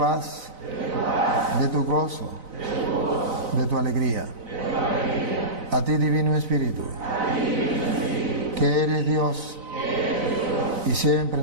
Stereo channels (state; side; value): late; left; 4.0 ms